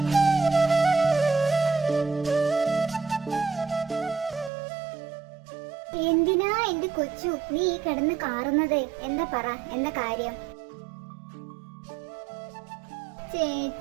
എന്തിനാ എന്റെ കൊച്ചു നീ കിടന്ന് കാറുന്നത്? എന്താ പറ, എന്താ കാര്യം?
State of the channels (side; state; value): left; drops out; at 4.5 s